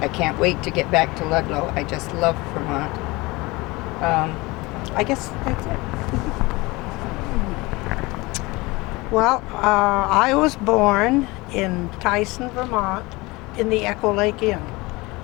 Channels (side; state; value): right; quieter; 22.9 dB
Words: I can't wait to get back to Ludlow. I just love Vermont. I guess that's it. Well, I was born in Tyson, Vermont, in the Echo Lake Inn.